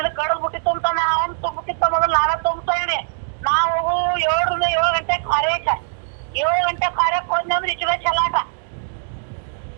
ಕಡದ್ ಬಿಟ್ಟಿತ್ತು ಅಂತಾನೆ ಅವ್ನು ತುಂಬಿಟ್ಟಿತ್ತ ಮೊದಲು ನಾನೇ ತುಂಬ್ತೇನೆ ನಾವು 7 ಗಂಟೆ ಕಾರ್ಯಕ್ಕೆ 7 ಗಂಟೆ ಕಾರ್ಯಕ್ಕೆ ಹೋದ್ನಿ ಅಂದ್ರೆ ಇಚ್ಚುವೆ ಚಲಾಟ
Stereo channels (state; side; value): silent; left; digital silence